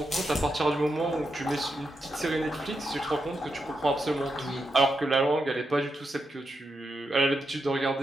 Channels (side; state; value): both; normal; correlation 0.85